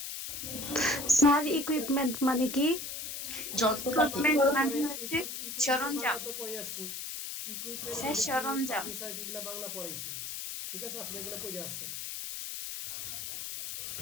স্যার ইকুইপমেন্ট মানে কি? ইকুইপমেন্ট যন্ত্রপাতি। বাংলা তো পরে, হচ্ছে ইকুইপমেন্ট বাংলা সরঞ্জাম। তো পড়ে আসছি। ইকুইপমেন্ট স্যার মানে কি, সরঞ্জাম। ফার্নিচার কি, এগুলা বাংলা পড়াইছি। ঠিক আছে, আপনি এগুলো পড়ে আসছেন।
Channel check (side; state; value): left; noise; hiss, 6 dB below the sound